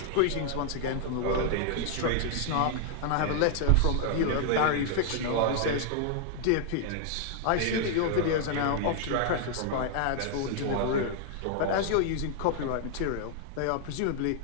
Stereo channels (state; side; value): different; both; correlation 0.00